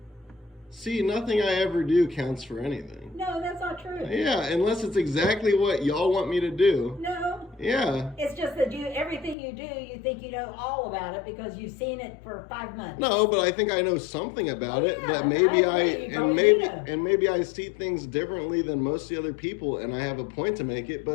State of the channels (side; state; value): right; drops out; at 9.3 s